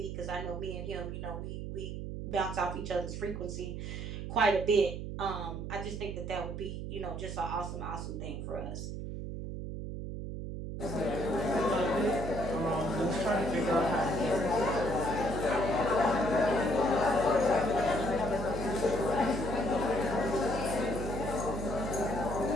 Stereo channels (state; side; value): noise; right; hum, 6 dB below the sound